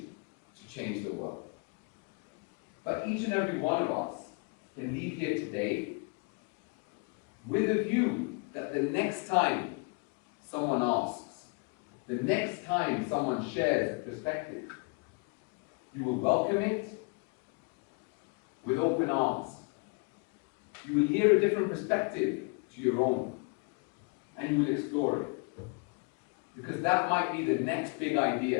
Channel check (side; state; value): right; quieter; 32.5 dB